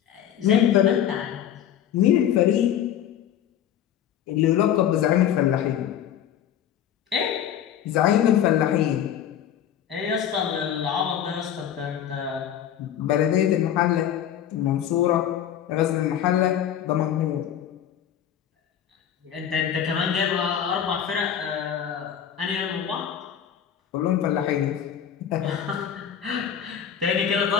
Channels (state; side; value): quieter; right; 9.8 dB